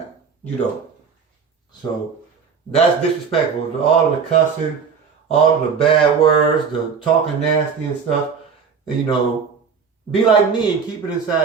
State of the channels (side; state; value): left; quieter; 6.0 dB